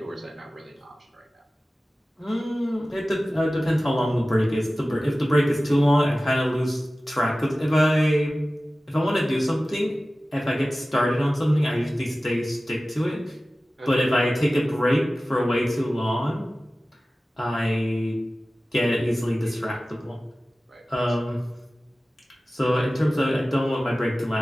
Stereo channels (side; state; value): both; normal; correlation 0.96